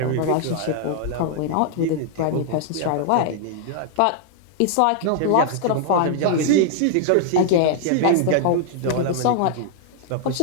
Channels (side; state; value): both; different; correlation -0.01